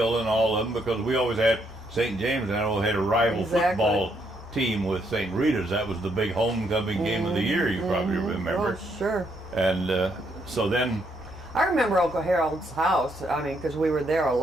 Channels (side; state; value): both; normal; correlation 0.74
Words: and all of them, because we always had St. James, and I always had a rival football team with St. Rita's. That was the big homecoming game of the year, you probably remember. Oh, sure. And so then. I remember Uncle Harold's house. I mean, because we were there a